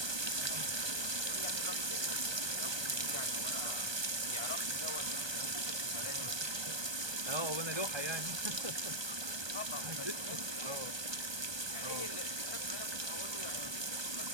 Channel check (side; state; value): left; late; 1.2 ms